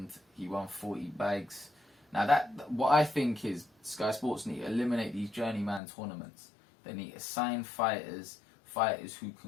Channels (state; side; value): drops out; right; at 5.8 s